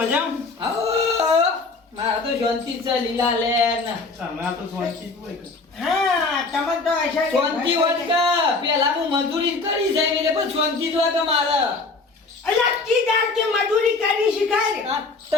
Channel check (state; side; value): quieter; right; 3.8 dB